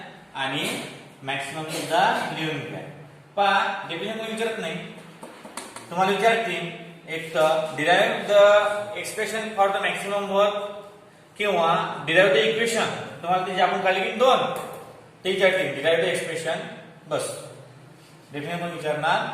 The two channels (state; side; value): identical; both; correlation 1.00